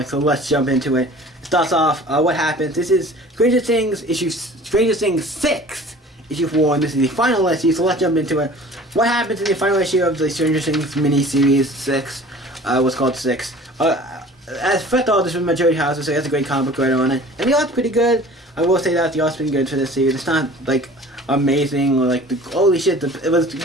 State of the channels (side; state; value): both; normal; correlation 0.45